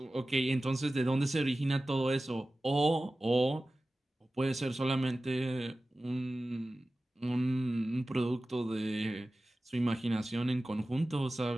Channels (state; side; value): normal; both; correlation 0.96